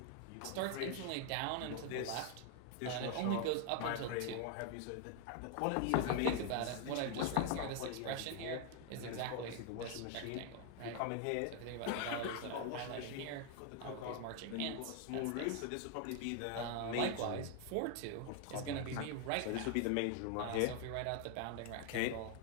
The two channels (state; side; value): different; both; correlation 0.00